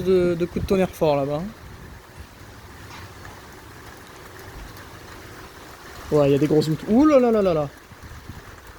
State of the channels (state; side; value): identical; both; correlation 1.00